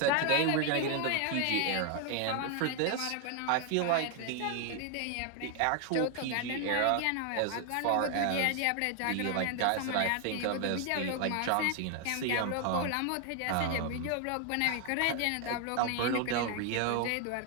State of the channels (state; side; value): different; both; correlation 0.00